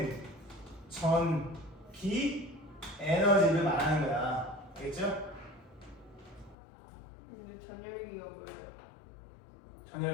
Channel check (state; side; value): drops out; right; at 6.6 s